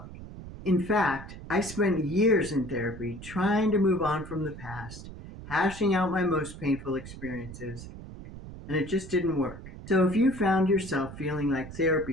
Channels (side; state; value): right; noise; rumble, 13 dB below the sound